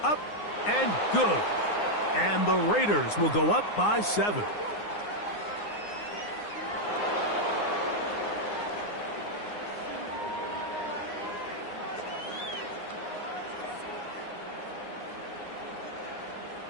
up and good. And the Raiders will go up by 7.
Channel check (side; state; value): right; late; 9.7 ms